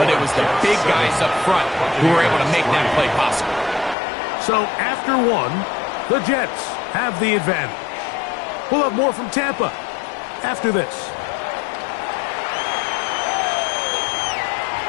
it was the big guys up front who were able to make that play possible. So after one, the Jets have the advantage. We'll have more from Tampa after this.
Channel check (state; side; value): drops out; right; at 4.0 s